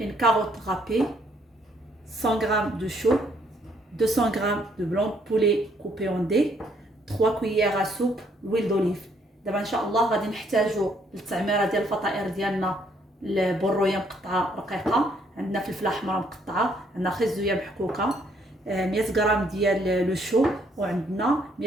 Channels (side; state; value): both; normal; correlation 0.68